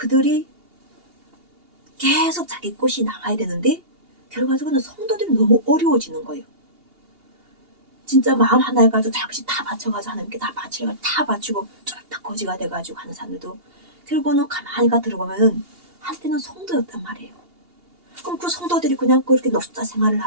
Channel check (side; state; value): left; late; 2.8 ms